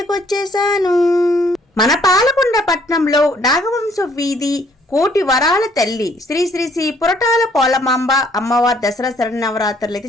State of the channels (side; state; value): both; normal; correlation 0.64